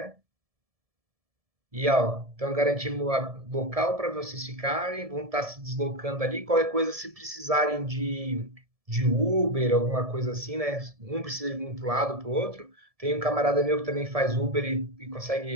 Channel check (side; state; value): left; late; 1.7 ms